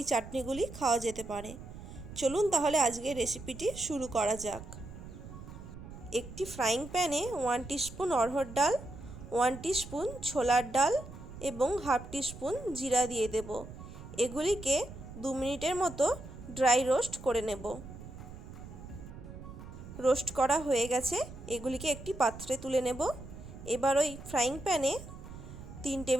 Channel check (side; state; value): right; noise; rumble, 13 dB below the sound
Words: চাটনিগুলি খাওয়া যেতে পারে। চলুন তাহলে আজকের রেসিপিটি শুরু করা যাক। একটি ফ্রাইং প্যানে 1 টিস্পুন অড়হর ডাল, 1 টিস্পুন ছোলার ডাল এবং হাফ টিস্পুন জিরা দিয়ে দেব। এগুলিকে 2 মিনিটের মতো ড্রাই রোস্ট করে নেব। রোস্ট করা হয়ে গেছে, এগুলিকে একটি পাত্রে তুলে নেব। এবার ওই ফ্রাইং প্যানে 3